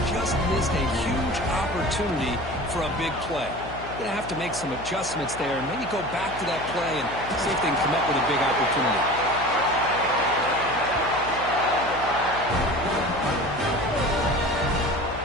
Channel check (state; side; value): noise; left; hum, 12 dB below the sound